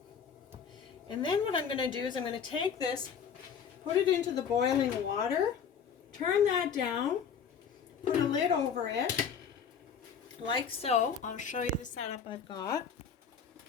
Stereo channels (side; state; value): right; quieter; 7.0 dB